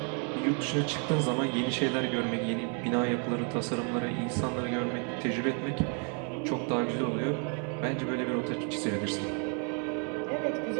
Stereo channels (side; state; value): left; quieter; 39.3 dB